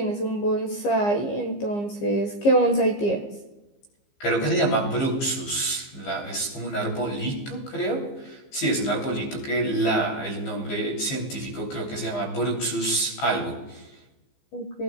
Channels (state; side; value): late; right; 15 ms